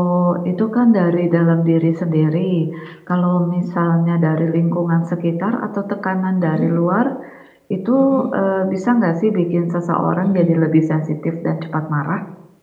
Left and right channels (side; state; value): both; identical; correlation 1.00